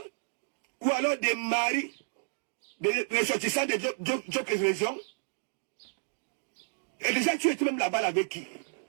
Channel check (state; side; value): silent; left; digital silence